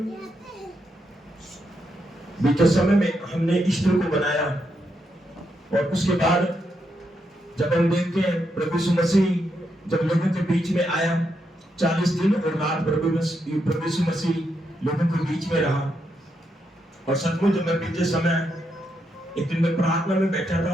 बीते समय में हमने ईस्टर को बनाया और उसके बाद जब हम देखते हैं प्रभु यीशु मसीह जब लोगों के बीच में आया, 40 दिन और रात प्रभु यीशु मसीह लोगों के बीच में रहा। और सचमुच जब मैं बीते समय एक दिन मैं प्रार्थना में बैठा था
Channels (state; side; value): normal; both; correlation 0.81